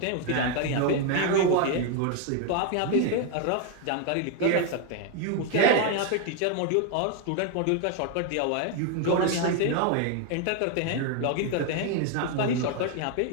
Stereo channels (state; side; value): different; both; correlation 0.01